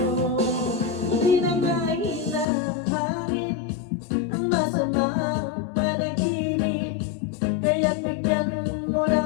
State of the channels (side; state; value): right; drops out; at 2.5 s